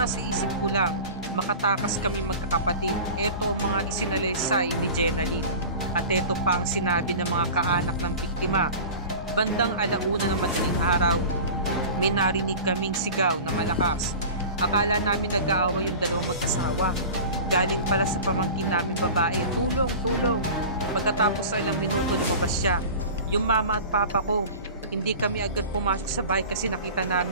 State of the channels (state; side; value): inverted; both; correlation -0.36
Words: isip ko lang, makatakas kami magkakapatid. Ito ang mga isinalaysay ni Jenaline. At ito pa ang sinabi ng mga kaanak ng biktima. Bandang 1:00 ng madaling araw, may narinig kaming sigaw na malakas. Akala namin nag-aaway yung dalawang magkasawa. Galing pala sa pamangkin namin babae, tulong, tulong. Pagkatapos sa ilang minuto lumabas siya. Yung mama at papa ko, hindi kami agad pumasok sa bahay kasi nakita